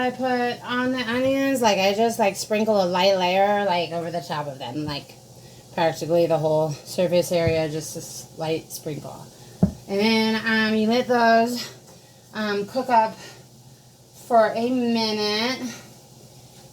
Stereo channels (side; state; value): both; identical; correlation 1.00